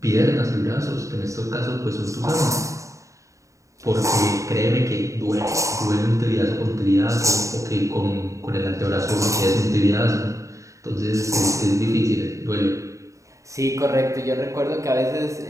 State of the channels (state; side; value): late; left; 0.15 ms